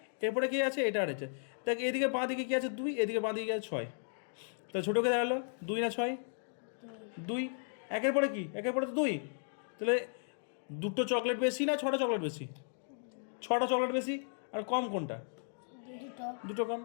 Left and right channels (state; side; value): silent; right; digital silence